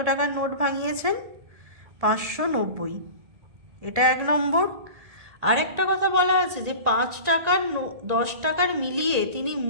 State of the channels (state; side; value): late; left; 1.9 ms